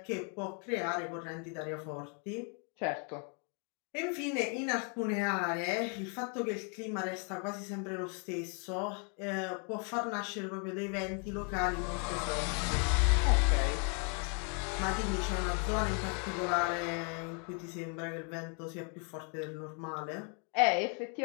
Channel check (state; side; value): quieter; right; 38.7 dB